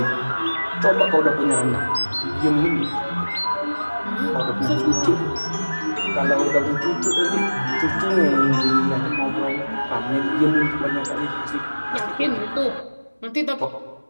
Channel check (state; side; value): inverted; both; correlation -1.00